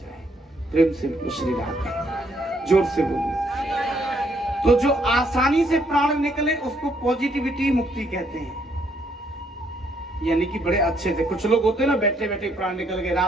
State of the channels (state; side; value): normal; both; correlation 0.70